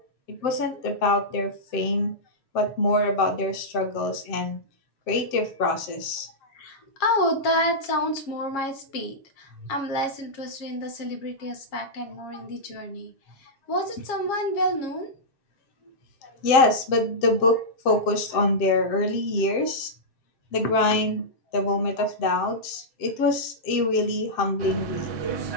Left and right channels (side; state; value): right; late; 7.6 ms